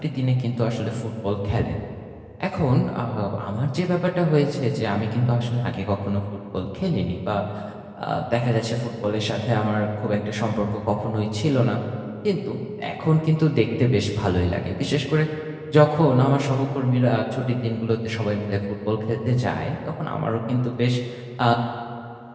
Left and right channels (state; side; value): identical; both; correlation 1.00